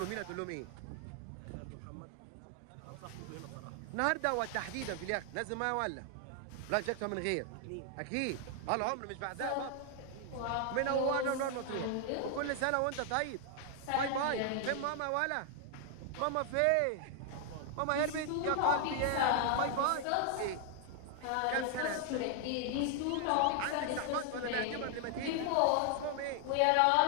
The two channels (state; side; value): different; both; correlation 0.00